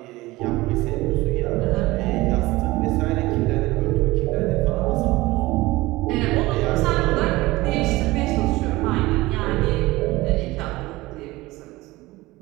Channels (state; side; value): quieter; left; 19.8 dB